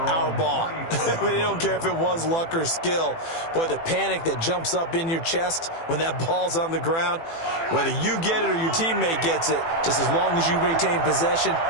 our ball. I mean, they don't care if it was luck or skill. Boy, the panic that jumps up in your chest when that ball's on the ground, whether you get it or your teammate gets it, just as long as you maintain possession,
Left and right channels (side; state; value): right; late; 18 ms